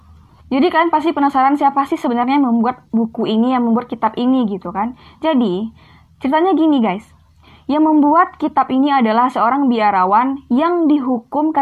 Jadi kalian pasti penasaran siapa sih sebenarnya yang membuat buku ini, yang membuat kitab ini gitu kan. Jadi ceritanya gini guys, yang membuat kitab ini adalah seorang biarawan yang dihukum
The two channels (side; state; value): both; identical; correlation 1.00